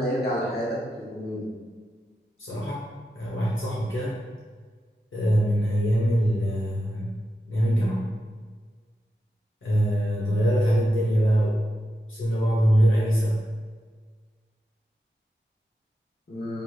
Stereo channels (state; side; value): normal; both; correlation 0.89